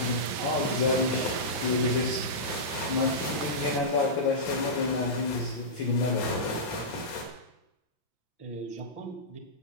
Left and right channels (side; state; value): right; late; 5.9 ms